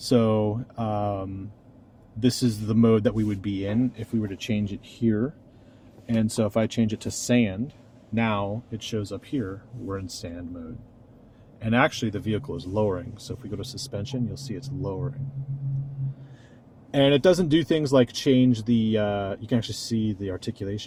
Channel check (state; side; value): identical; both; correlation 1.00